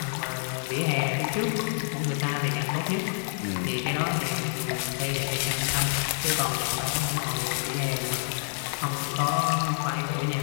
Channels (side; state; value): right; silent; digital silence